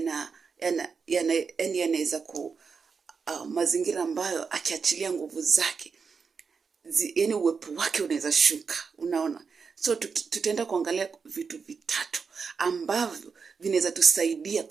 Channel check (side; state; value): left; quieter; 5.5 dB